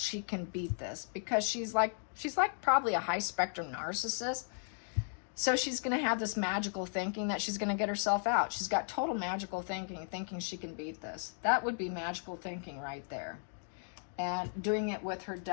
can beat this because she's like probably a high spectrum narcissist. So she's going to have this magical thinking that she's going to get herself out. She's got total magical thinking she can beat this. That would be magical thinking right there. And doing it with her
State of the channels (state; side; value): silent; right; 54 dB below the other